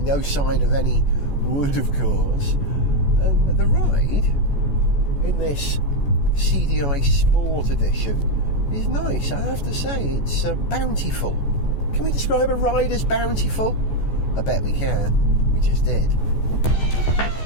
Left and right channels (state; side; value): late; right; 14 ms